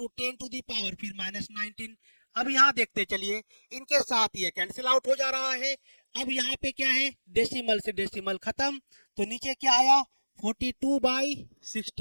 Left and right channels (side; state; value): both; inverted; correlation -1.00